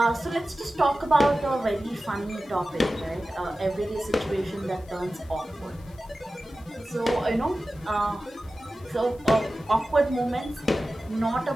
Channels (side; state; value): left; noise; hiss, 27 dB below the sound